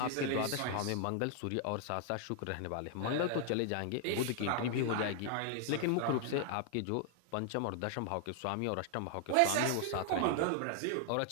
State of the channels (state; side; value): different; both; correlation 0.00